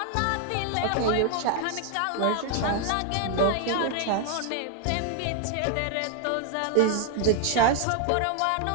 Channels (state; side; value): different; both; correlation 0.00